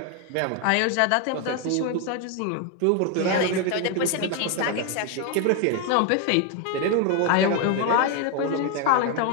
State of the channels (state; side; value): different; both; correlation 0.01